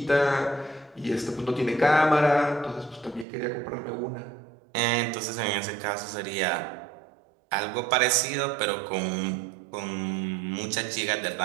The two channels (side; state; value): left; drops out; at 3.2 s